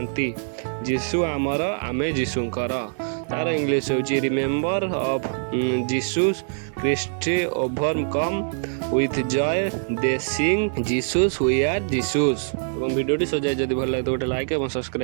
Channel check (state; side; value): silent; left; digital silence